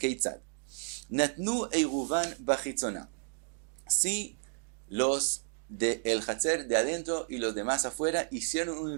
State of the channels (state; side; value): silent; left; 56 dB below the other